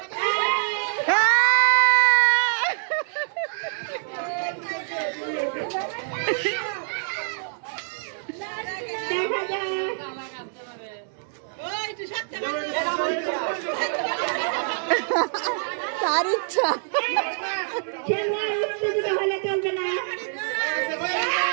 তার ইচ্ছা। খেলোয়াড় উত্তেজিত হলে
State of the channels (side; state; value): left; silent; 62 dB below the other